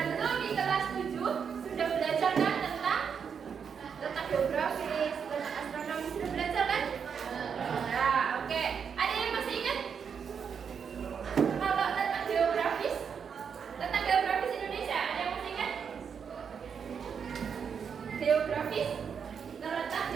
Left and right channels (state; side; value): quieter; left; 6.8 dB